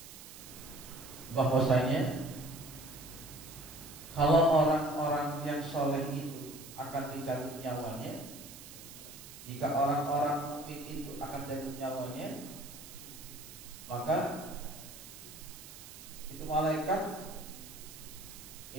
bahwasanya kalau orang-orang yang soleh itu akan dicabut nyawanya, jika orang-orang mukmin itu akan dicabut nyawanya, maka itu malaikat,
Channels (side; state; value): right; noise; hiss, 15 dB below the sound